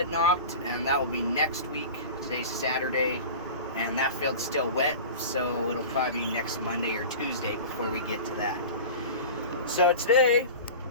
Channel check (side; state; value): both; inverted; correlation -0.34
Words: knocked, and that will be next week. Today's Saturday, and that field's still wet, so it'll probably be next Monday or Tuesday before we get to that. So today,